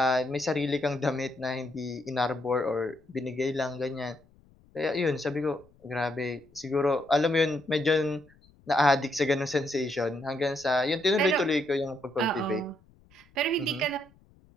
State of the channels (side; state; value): left; noise; rumble, 29 dB below the sound